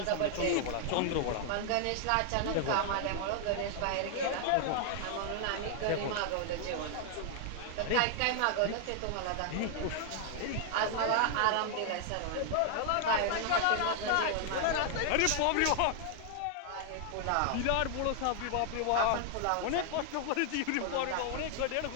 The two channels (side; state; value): both; different; correlation 0.00